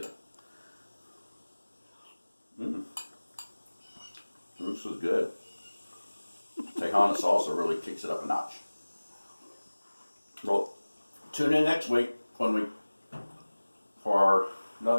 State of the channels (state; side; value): inverted; both; correlation -1.00